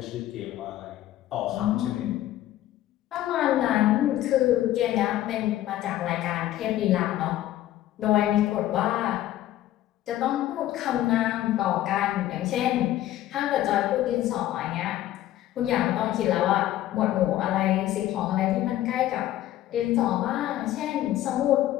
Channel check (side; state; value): right; quieter; 13.8 dB